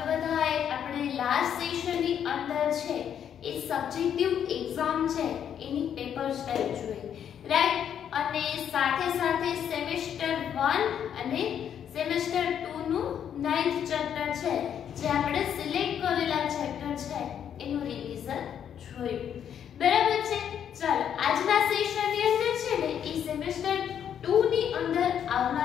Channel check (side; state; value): right; quieter; 8.9 dB